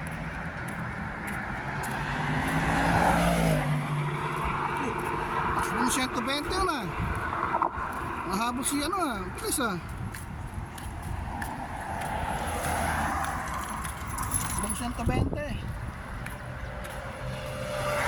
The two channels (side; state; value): both; identical; correlation 1.00